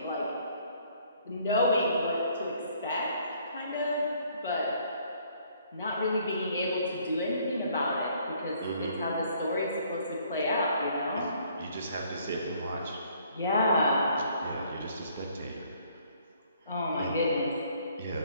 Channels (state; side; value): inverted; both; correlation -0.63